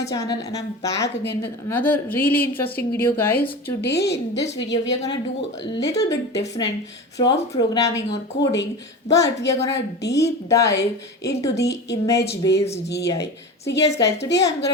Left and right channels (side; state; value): both; normal; correlation 0.29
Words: channel and I'm back again with another really interesting video guys. Today in this video we are gonna do a little bit different from programming or coding, but we are gonna deep dive into the image based AI. So yes guys, today I'm